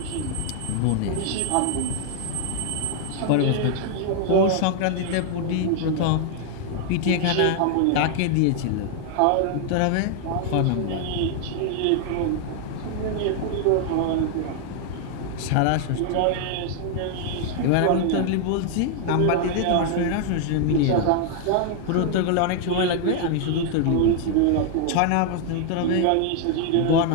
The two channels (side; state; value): both; different; correlation 0.00